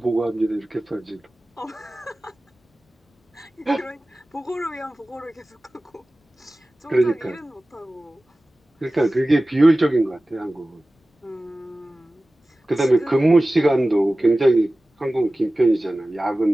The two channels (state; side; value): normal; both; correlation 0.97